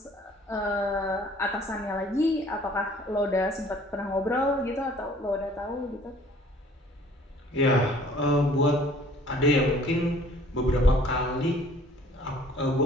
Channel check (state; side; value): normal; both; correlation 0.54